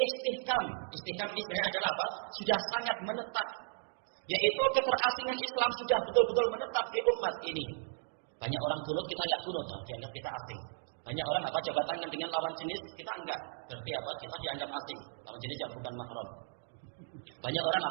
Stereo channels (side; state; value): left; silent; 54 dB below the other